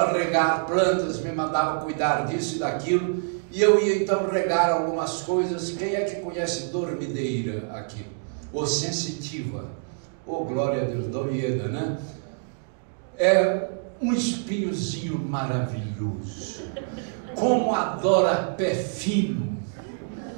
regar plantas, me mandava cuidar disso e daquilo. E eu ia então regar algumas coisas. Quem é que conhece dormideira aqui? Ou sensitiva? Oh, glória a Deus, Dorieda, né? É um espinhozinho maravilhoso. Como adora pé fino.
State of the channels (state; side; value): silent; left; digital silence